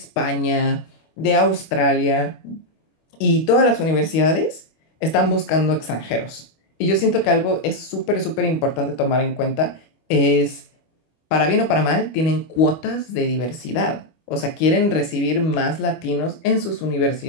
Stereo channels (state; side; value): late; right; 25 ms